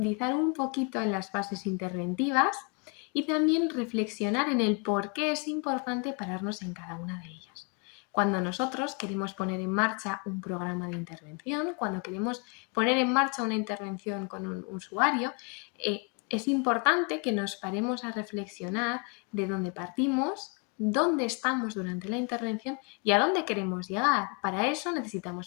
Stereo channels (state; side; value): quieter; right; 34.5 dB